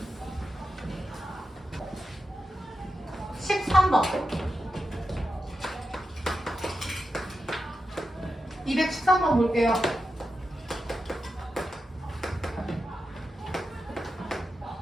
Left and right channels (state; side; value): normal; both; correlation 0.89